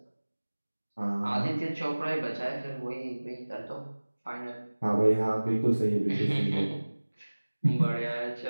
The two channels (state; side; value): inverted; both; correlation -1.00